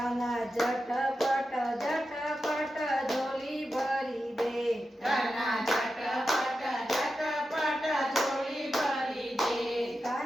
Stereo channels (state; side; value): normal; both; correlation 0.90